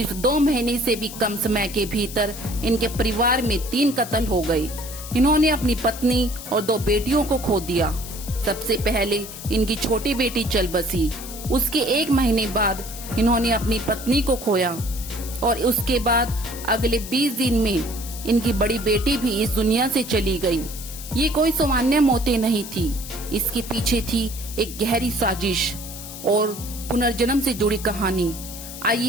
2 महीने से भी कम समय के भीतर इनके परिवार में 3 कत्ल हो गए। इन्होंने अपनी पत्नी और 2 बेटियों को खो दिया। सबसे पहले इनकी छोटी बेटी चल बसी, उसके 1 महीने बाद इन्होंने अपनी पत्नी को खोया और उसके बाद अगले 20 दिन में इनकी बड़ी बेटी भी इस दुनिया से चली गई। ये कोई सामान्य मौतें नहीं थी, इसके पीछे थी एक गहरी साजिश और पुनर्जन्म से जुड़ी कहानी।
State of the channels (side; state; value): left; noise; hiss, 12 dB below the sound